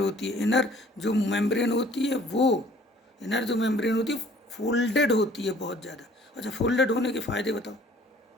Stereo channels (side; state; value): both; normal; correlation 0.55